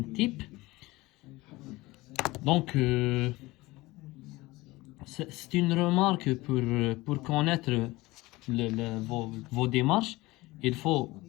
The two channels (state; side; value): quieter; right; 20.5 dB